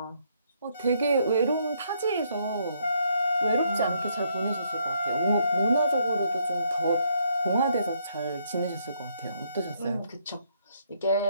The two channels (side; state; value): both; inverted; correlation -0.72